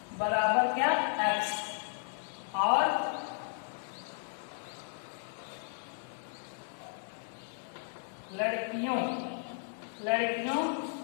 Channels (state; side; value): silent; right; 55 dB below the other